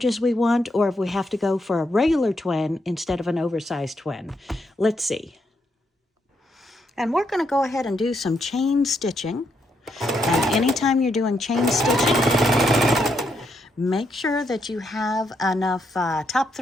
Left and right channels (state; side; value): normal; both; correlation 0.79